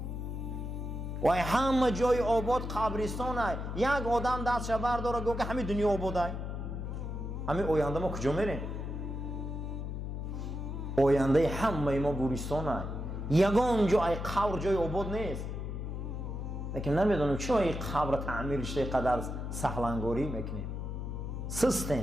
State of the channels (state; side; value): noise; left; hum, 5 dB below the sound